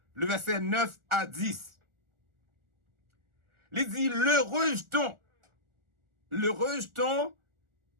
le verset 9 à 10. Il dit, le rejeton. Le rejeton,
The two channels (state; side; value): late; left; 1.4 ms